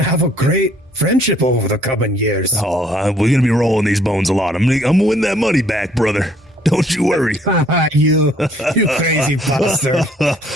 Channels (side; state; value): both; normal; correlation 0.62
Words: have a great friendship over the coming years. Oh, we're going to be rolling these bones a lot. I'm going to win that money back, brother. Don't you worry. You crazy bastard.